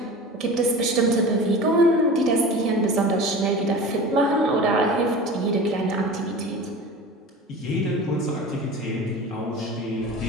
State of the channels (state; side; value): normal; both; correlation 0.35